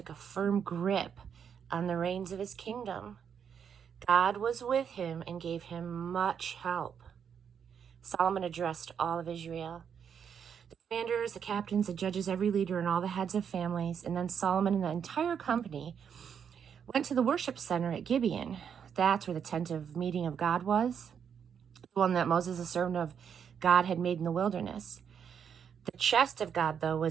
a firm grip on the reins of his kingdom. God was with him and gave him much help. Solomon addressed all of Israel, the commanders, the captains, the judges, every leader, and all the heads of families. And then Solomon and the entire company went to the worship center at Gibeon. That's where the tent of meeting of God was, the one that Moses, the servant of God, had made in the wilderness. The chest of God, though,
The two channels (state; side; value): quieter; left; 7.6 dB